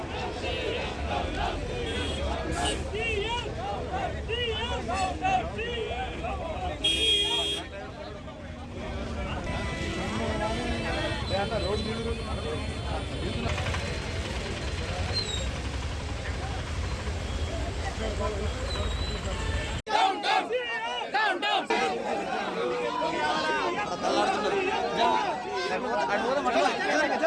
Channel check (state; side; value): identical; both; correlation 1.00